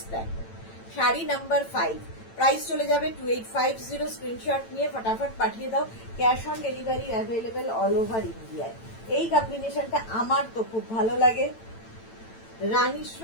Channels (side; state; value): right; late; 8.9 ms